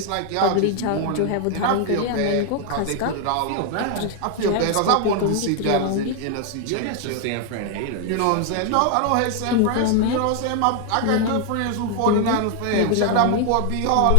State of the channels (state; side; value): different; both; correlation 0.00